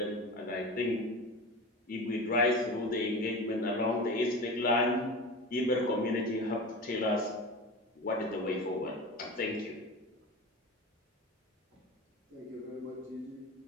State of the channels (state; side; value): normal; both; correlation 0.30